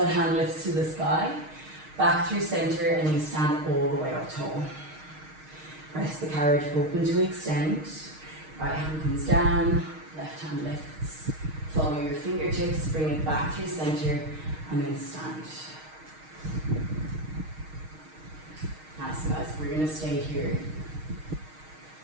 hand lifts to the sky. Back through center and you stand all the way up tall. Press the carriage open to extend. Right hand comes down. Left hand lifts. Follow your fingertips. Bring it back through center and then stand. Nice guys, we're going to stay here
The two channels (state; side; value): late; left; 6.4 ms